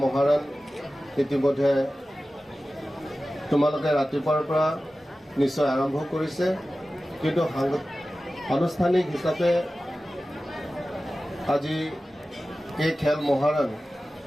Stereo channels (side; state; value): both; normal; correlation 0.95